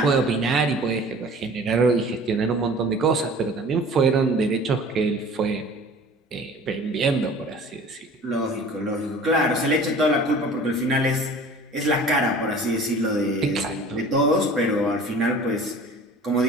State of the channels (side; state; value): both; normal; correlation 0.45